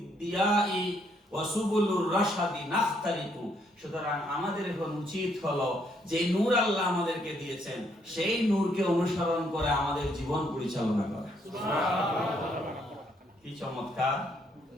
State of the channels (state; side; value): normal; both; correlation 0.71